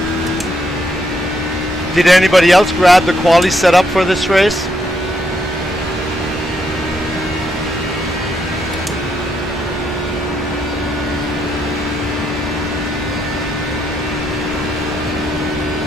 Did anybody else grab the quali setup for this race?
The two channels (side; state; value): both; normal; correlation 0.76